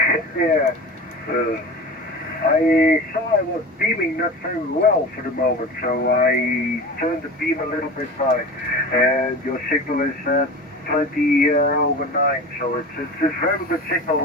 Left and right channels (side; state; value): both; normal; correlation 0.33